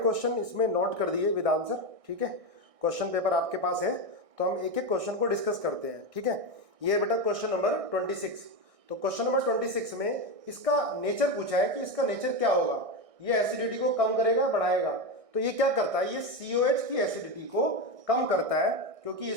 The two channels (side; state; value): left; late; 1.6 ms